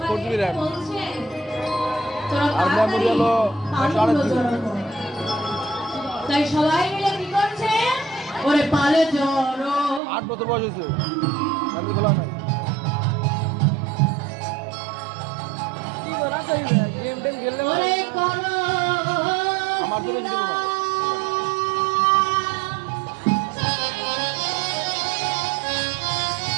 4 সবাই GB RAM বলছে, তোরা আর তাড়াতাড়ি memory হলো পালগুলো 128 GB। জড়ো কর। তাই সবাই মিলে কি করছে ওরে পালে জড়ো 8 বছর বয়স হয়েছে আমি খোলা নাই কি করা তো গেম টেম খেললে ওরে করো আমার তো বেশি দেবো না।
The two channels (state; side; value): drops out; left; at 10.0 s